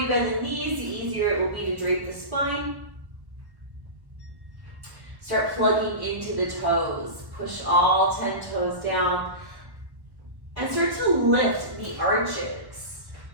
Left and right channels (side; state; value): left; late; 1.1 ms